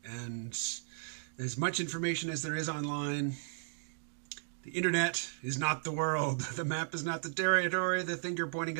And as much information as there is online, the internet is not the world. The map is not the territory. The finger pointing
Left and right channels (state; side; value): silent; left; digital silence